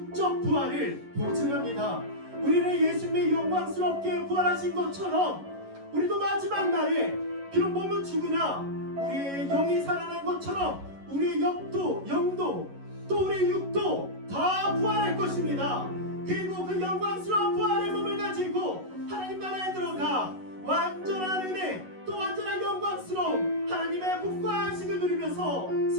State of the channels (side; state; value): left; late; 11 ms